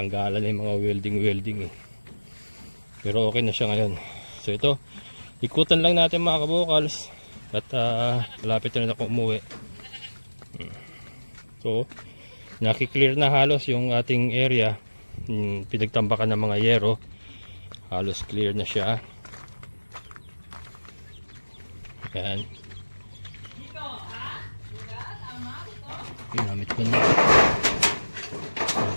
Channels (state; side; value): inverted; both; correlation -1.00